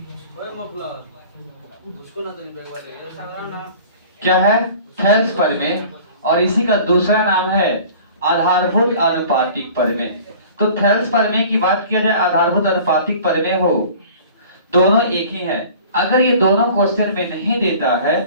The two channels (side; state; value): both; inverted; correlation -0.45